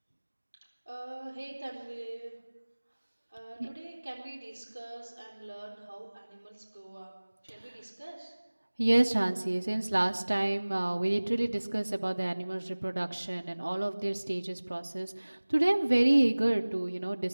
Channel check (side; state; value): both; inverted; correlation -1.00